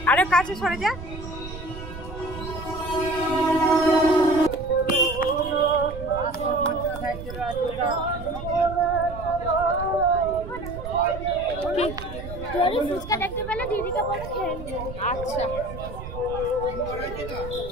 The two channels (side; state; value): right; noise; rumble, 11 dB below the sound